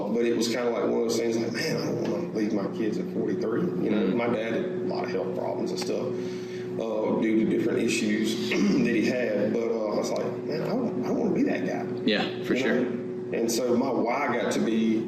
it was kind of like one of those things like, man, I don't want to leave my kids at 43. My dad had a lot of health problems and stuff due to different issues that he had. But I was like, man, I don't want to be that guy. Yeah, for sure. And so my why got to be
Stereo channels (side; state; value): both; identical; correlation 1.00